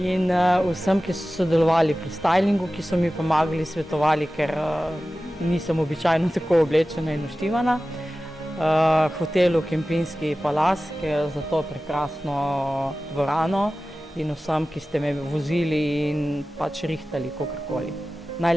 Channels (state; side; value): normal; both; correlation 0.96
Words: vsem, ki so sodelovali pri stylingu, ki so mi pomagali, svetovali, ker nisem običajno tako oblečena in naštivana. Hotelu Kempinski Palas, ki je za to prekrasno dvorano, in vsem, ki ste me vozili in pač rihtali kakorkoli.